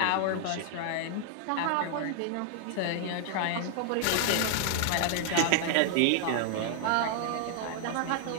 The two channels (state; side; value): different; both; correlation 0.00